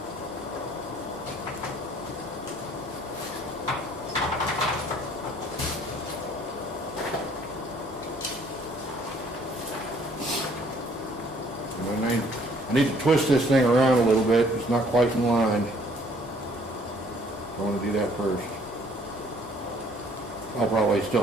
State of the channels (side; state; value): both; normal; correlation 0.60